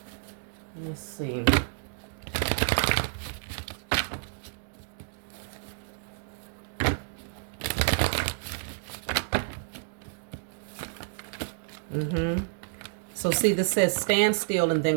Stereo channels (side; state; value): left; silent; digital silence